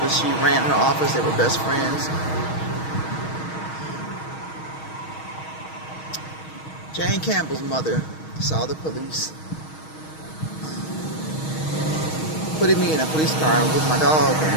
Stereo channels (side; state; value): right; late; 6.4 ms